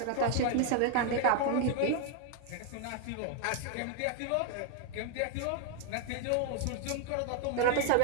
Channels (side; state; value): both; different; correlation 0.00